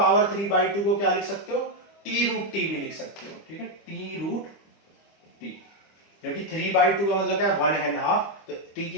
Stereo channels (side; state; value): right; late; 25 ms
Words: 3/2 को क्या लिख सकते हो, t√t भी लिख सकते हो। ठीक है, t√t, क्योंकि 3/2 का मतलब क्या है, 1.5, तो t